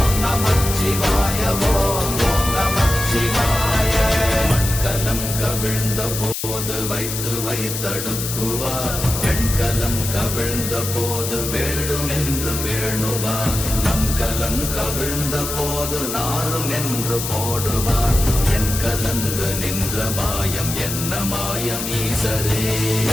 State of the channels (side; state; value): left; noise; hiss, 5 dB below the sound